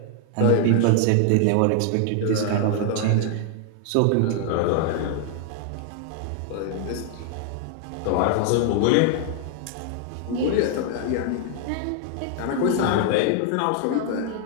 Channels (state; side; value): different; both; correlation 0.00